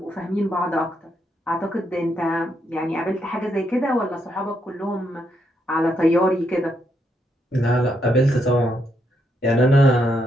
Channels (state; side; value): normal; both; correlation 0.78